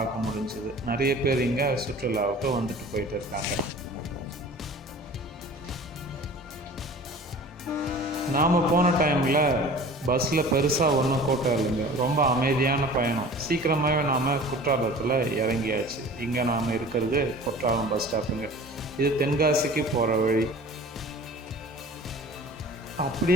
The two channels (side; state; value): both; normal; correlation 0.42